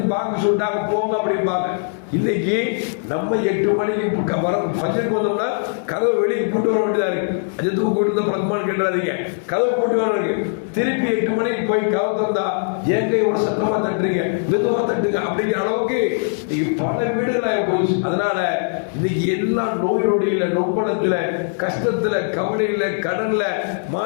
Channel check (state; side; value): silent; right; digital silence